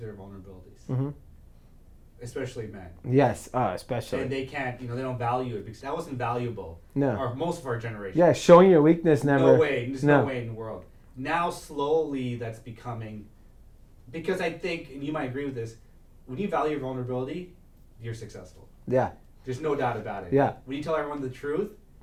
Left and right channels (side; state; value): both; identical; correlation 1.00